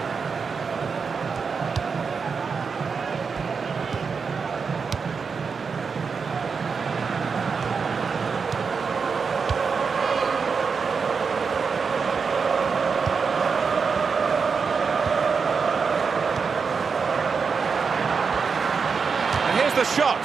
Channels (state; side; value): quieter; left; 5.5 dB